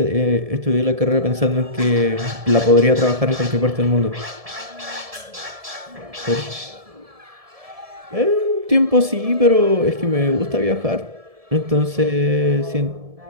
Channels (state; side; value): late; left; 1.7 ms